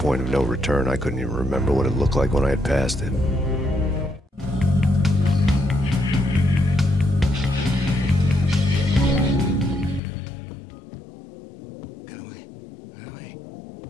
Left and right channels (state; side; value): drops out; right; at 10.0 s